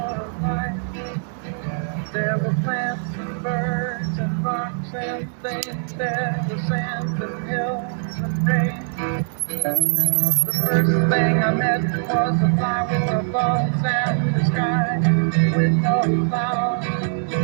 life. There were plants and birds and rocks and things. There was sand and hills and rain. The first thing I met was a fly with a buzz and the sky with no clouds.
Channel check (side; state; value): left; silent; digital silence